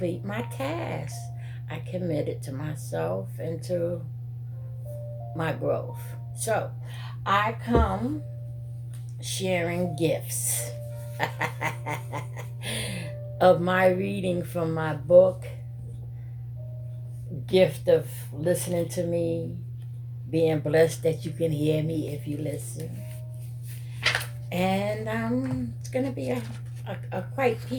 my task. I committed to myself and to my growth. So I come sharing gifts of my reading from my book, gift of listening to me, being blessed that you can hear me if you listen. And it's going to be a quite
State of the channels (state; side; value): identical; both; correlation 1.00